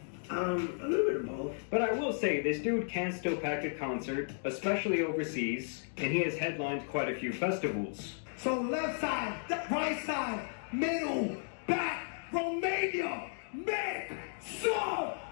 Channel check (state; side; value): silent; right; digital silence